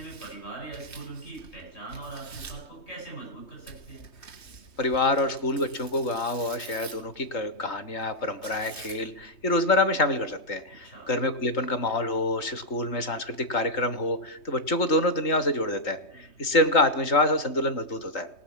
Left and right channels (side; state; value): right; late; 3.2 ms